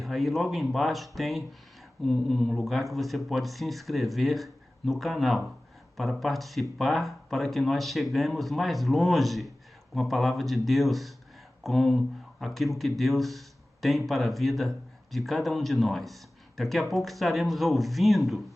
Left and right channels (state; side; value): normal; both; correlation 0.97